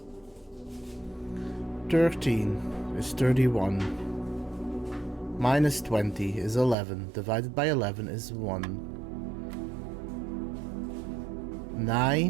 13 is 31. Minus 20 is 11. Divided by 11 is 1.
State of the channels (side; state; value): left; drops out; at 6.8 s